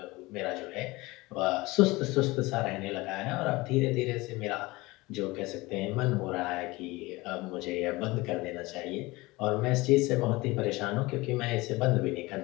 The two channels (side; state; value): right; quieter; 21.7 dB